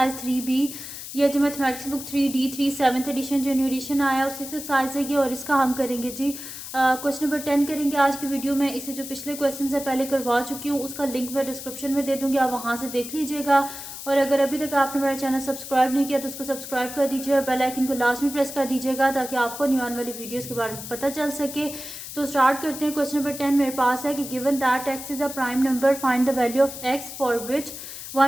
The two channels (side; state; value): left; noise; hiss, 10 dB below the sound